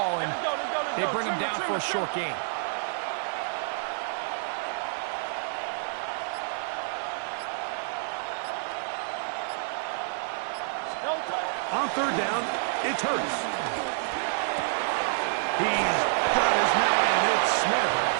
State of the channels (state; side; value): silent; left; digital silence